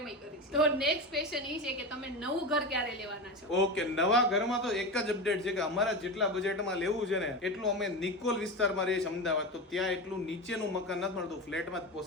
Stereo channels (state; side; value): normal; both; correlation 0.22